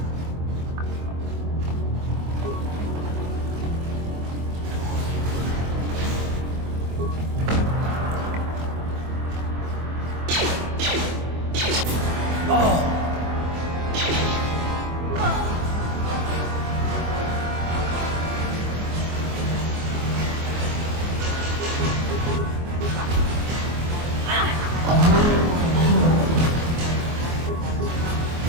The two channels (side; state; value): left; late; 24 ms